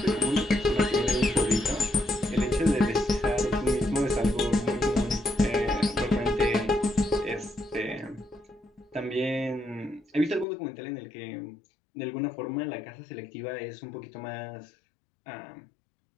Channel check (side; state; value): right; drops out; at 10.5 s